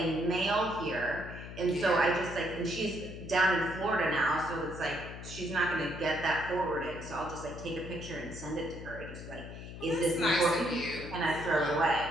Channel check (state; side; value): noise; left; hum, 11 dB below the sound